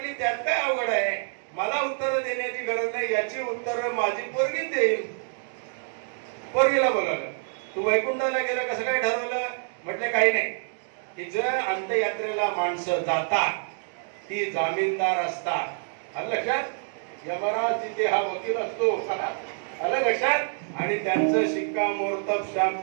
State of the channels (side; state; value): left; silent; digital silence